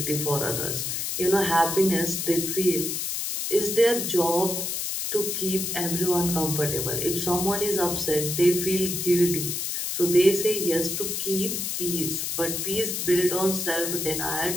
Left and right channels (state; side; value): noise; left; hiss, 2 dB below the sound